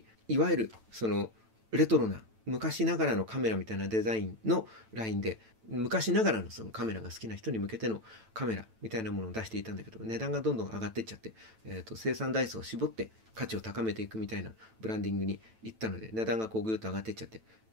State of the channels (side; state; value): left; late; 9.0 ms